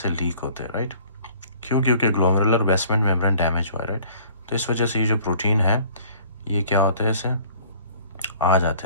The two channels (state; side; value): inverted; both; correlation -0.54